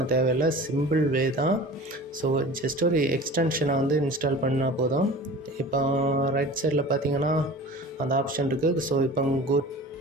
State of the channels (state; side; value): normal; both; correlation 0.39